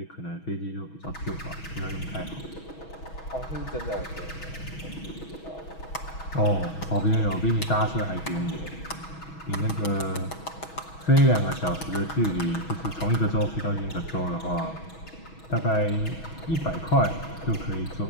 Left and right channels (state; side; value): late; right; 6.2 ms